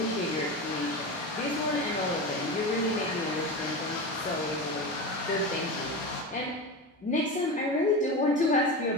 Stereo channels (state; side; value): normal; both; correlation 0.24